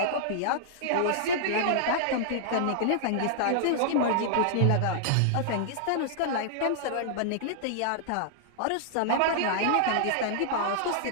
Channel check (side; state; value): both; different; correlation -0.01